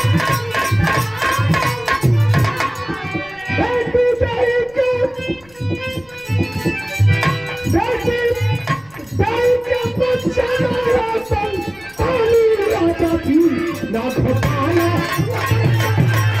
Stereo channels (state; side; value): noise; left; rumble, 28 dB below the sound